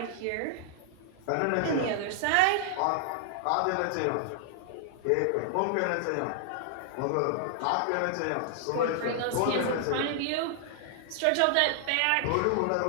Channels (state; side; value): different; both; correlation -0.01